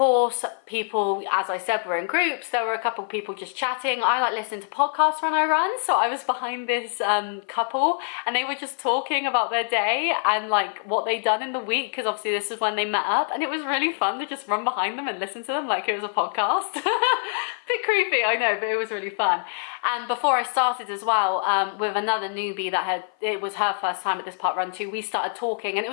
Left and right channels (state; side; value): silent; right; 55 dB below the other